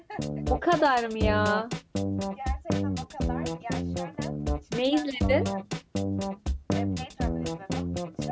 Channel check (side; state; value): both; identical; correlation 1.00